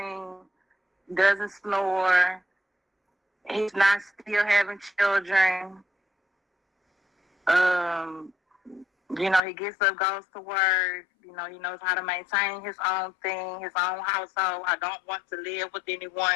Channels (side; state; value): right; drops out; at 9.4 s